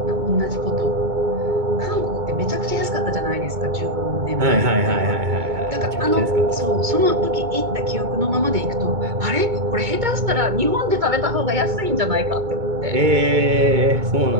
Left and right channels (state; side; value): late; left; 2.2 ms